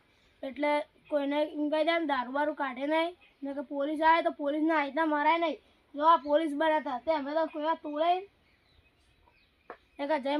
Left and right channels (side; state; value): both; identical; correlation 1.00